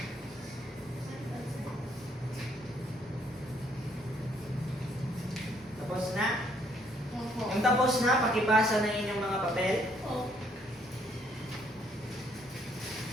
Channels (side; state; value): both; normal; correlation 0.68